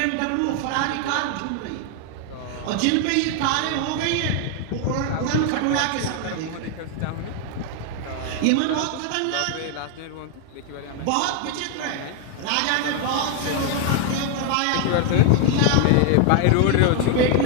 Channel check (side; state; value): both; different; correlation 0.00